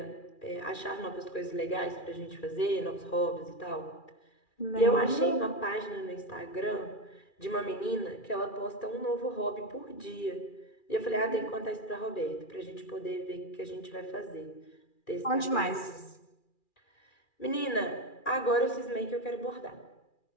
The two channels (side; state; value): right; late; 2.4 ms